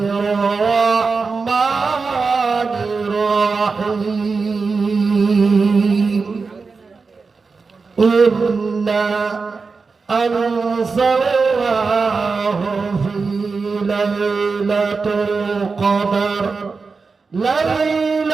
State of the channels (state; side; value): quieter; left; 4.6 dB